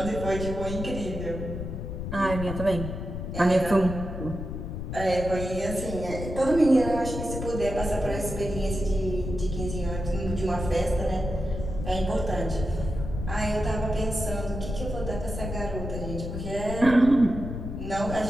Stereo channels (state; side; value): noise; left; rumble, 6 dB below the sound